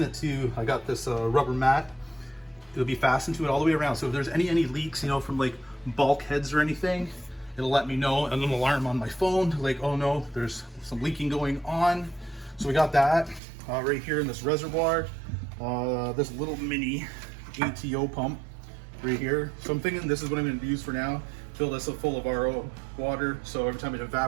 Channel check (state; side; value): drops out; left; at 13.4 s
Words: it to, I got this rubber mat. It'll be fastened to it all the way around. So if there's any leaks, from like bulkheads or anything, it'll let me know, and an alarm on my phone, like, oh no, there's some leaking going on. So we got that right here in this reservoir, this little mini ATO pump right here. So I'm thinking this is what I'm going to use for now. Fill this up full of RO water, so every time it